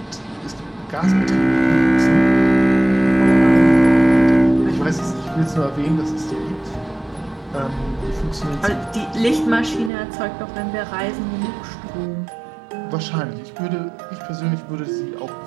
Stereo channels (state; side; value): drops out; left; at 9.9 s